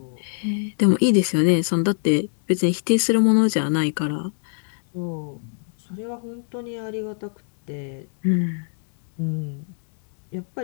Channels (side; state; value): right; silent; digital silence